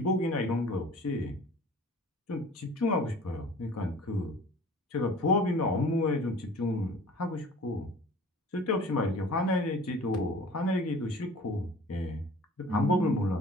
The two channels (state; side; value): normal; both; correlation 0.45